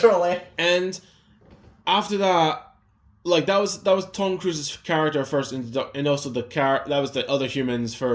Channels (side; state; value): both; identical; correlation 1.00